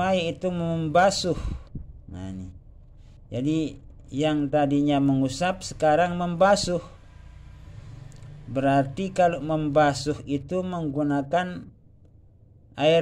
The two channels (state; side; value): identical; both; correlation 1.00